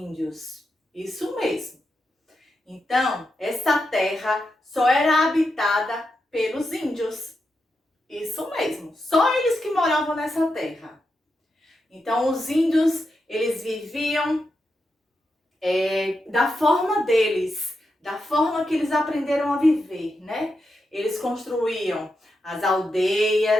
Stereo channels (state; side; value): normal; both; correlation 0.86